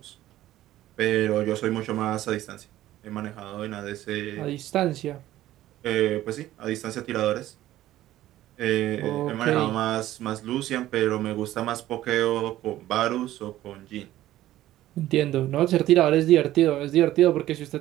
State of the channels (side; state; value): left; quieter; 14.4 dB